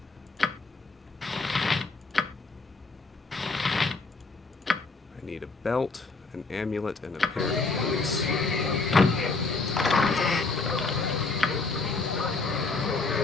I need a belt, an amulet, and a pair of boots.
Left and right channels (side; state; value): right; quieter; 3.8 dB